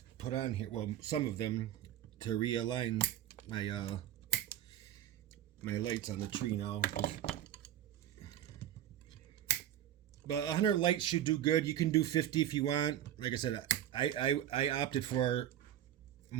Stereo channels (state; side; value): quieter; left; 11.6 dB